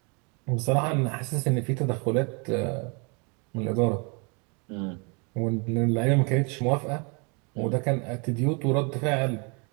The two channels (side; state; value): left; quieter; 33.7 dB